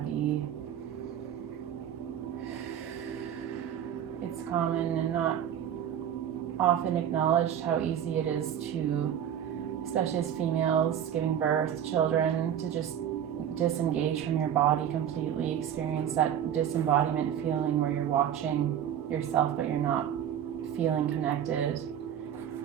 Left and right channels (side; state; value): left; quieter; 9.7 dB